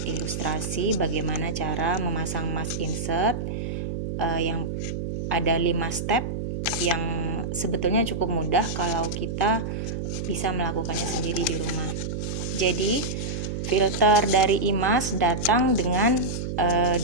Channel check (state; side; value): noise; right; hum, 4 dB below the sound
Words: ilustrasi bagaimana cara memasang mask insert yang ada 5 step yang sebetulnya cukup mudah kalau kita bisa melakukannya sendiri di rumah. Jadi filter dari IMAS datang dengan